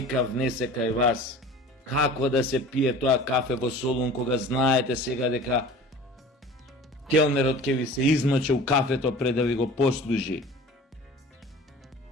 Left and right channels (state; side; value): normal; both; correlation 0.41